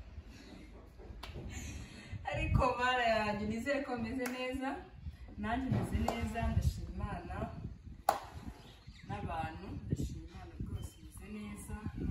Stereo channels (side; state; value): both; identical; correlation 1.00